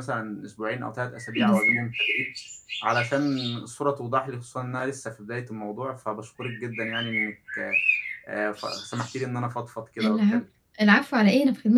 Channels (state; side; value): identical; both; correlation 1.00